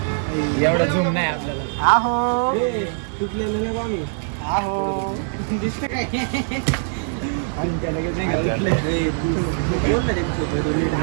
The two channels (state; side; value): silent; left; 64 dB below the other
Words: एवढा झूम नाही आपल्याला. आहो तुटलेलं नाही आम्ही. आहो दिसतं काय.